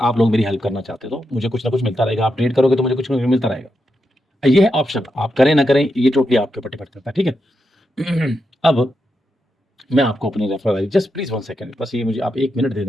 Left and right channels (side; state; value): both; normal; correlation 0.85